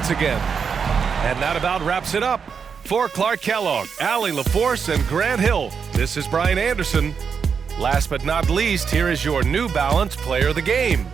again. And that about wraps it up. For Clark Kellogg, Allie LaForce, and Grant Hill, this is Brian Anderson. Last but not least, here is your New Balance Player of the Game,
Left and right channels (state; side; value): quieter; left; 6.3 dB